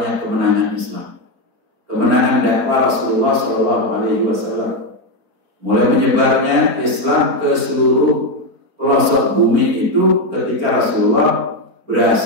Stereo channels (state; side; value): late; left; 4.4 ms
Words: kemenangan Islam, kemenangan dakwah Rasulullah SAW. Mulai menyebarnya Islam ke seluruh pelosok bumi itu ketika Rasulullah